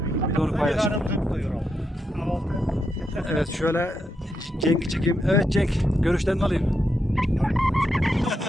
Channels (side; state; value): both; normal; correlation 0.83